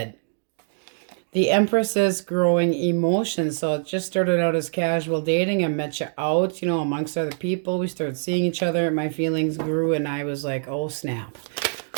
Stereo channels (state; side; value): silent; left; digital silence